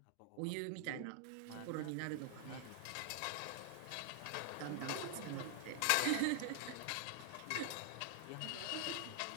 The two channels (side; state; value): both; different; correlation 0.00